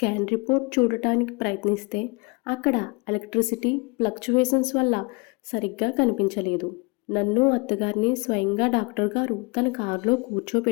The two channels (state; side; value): quieter; right; 28.7 dB